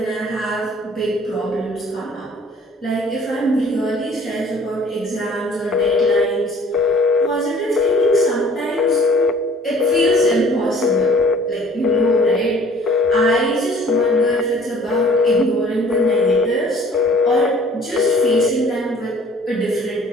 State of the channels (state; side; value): normal; both; correlation 0.53